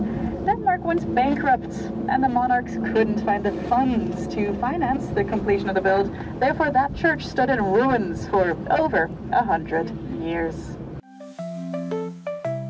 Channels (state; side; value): identical; both; correlation 1.00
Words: Denmark went bankrupt and the monarchs couldn't find the funds to finance the completion of the build. Therefore, that church stood in ruins for over 100 years.